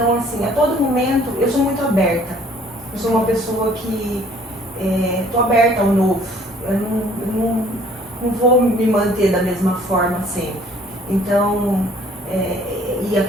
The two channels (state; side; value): normal; both; correlation 0.57